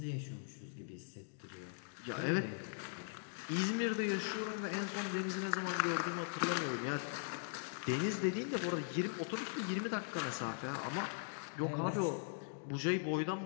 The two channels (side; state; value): right; silent; digital silence